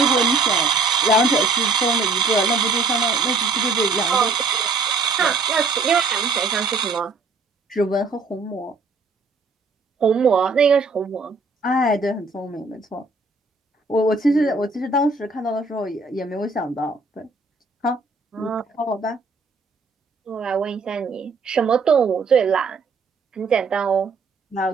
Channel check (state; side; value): quieter; left; 3.9 dB